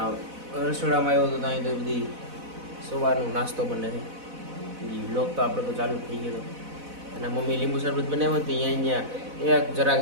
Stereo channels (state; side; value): late; left; 4.0 ms